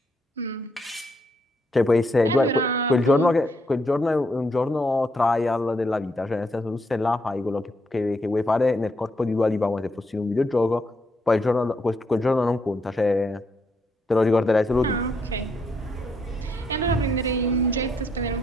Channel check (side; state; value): both; normal; correlation 0.76